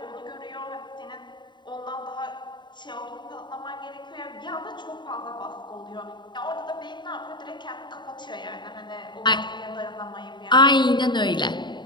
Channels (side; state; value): right; late; 0.22 ms